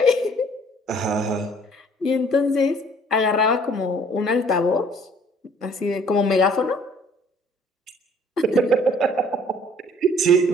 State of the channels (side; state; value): both; normal; correlation 0.57